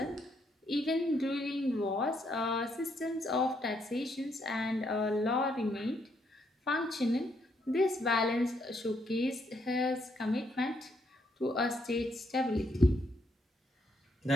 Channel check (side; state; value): both; normal; correlation 0.74